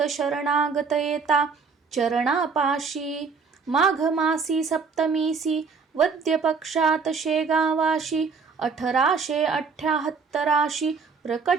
शरणागत येता, चरणापाशी. माघ मासी सप्तमीसी, वद्य पक्षात शेगावाशी, 1878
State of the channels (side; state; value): left; quieter; 5.2 dB